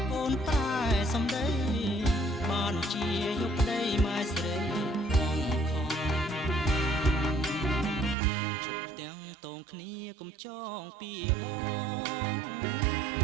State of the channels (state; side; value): drops out; left; at 8.2 s